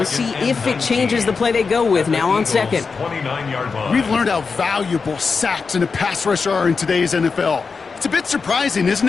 see if it changes the play they go with now on 2nd. 29-yard line. We've learned how valuable sacks in a pass rush are in today's NFL. It's a bit surprising, isn't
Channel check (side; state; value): right; quieter; 4.9 dB